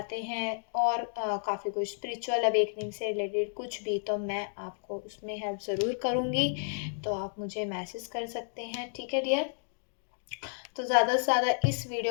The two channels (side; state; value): right; silent; digital silence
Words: हैं, और काफ़ी कुछ स्पिरिचुअल अवेकनिंग से रिलेटेड कुछ भी, तो मैं आपको उसमें हेल्प ज़रूर करूँगी। तो आप मुझे मैसेज कर सकते हैं, ठीक है डियर? तो ज़्यादा से ज़्यादा इस